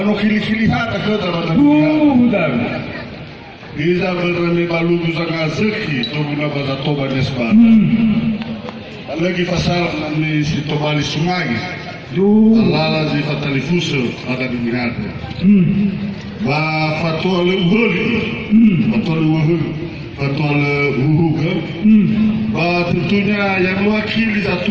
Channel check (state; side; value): identical; both; correlation 1.00